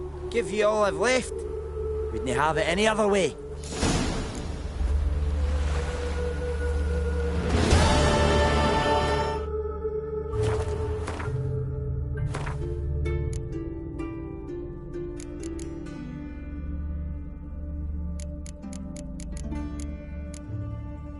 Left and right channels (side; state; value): both; identical; correlation 1.00